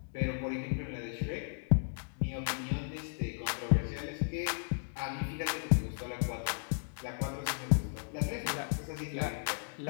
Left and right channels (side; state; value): right; silent; digital silence